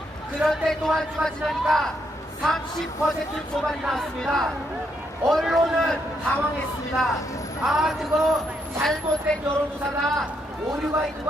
그런데 또 한 주가 지나니까 30% 초반이 나왔습니다. 언론은 당황했습니다. 아, 그거 잘못된 여론조사다, 오류가 있는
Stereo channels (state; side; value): normal; both; correlation 0.77